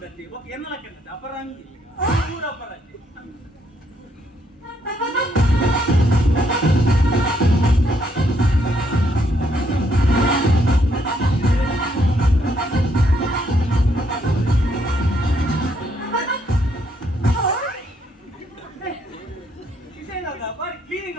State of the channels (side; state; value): both; normal; correlation 0.72